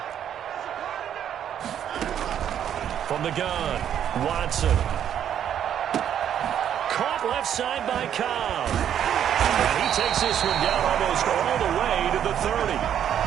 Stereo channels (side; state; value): left; quieter; 9.6 dB